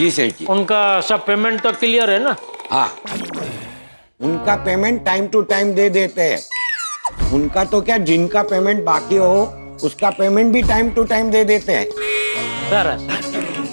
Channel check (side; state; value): both; inverted; correlation -1.00